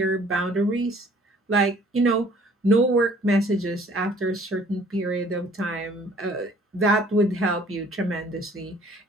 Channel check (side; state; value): both; normal; correlation 0.56